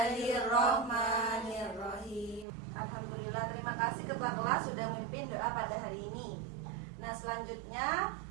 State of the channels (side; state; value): left; drops out; at 2.5 s